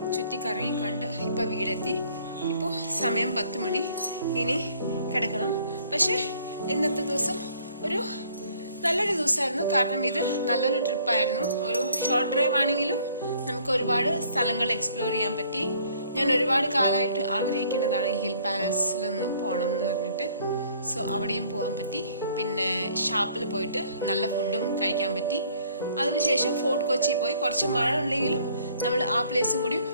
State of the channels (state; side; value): inverted; both; correlation -0.60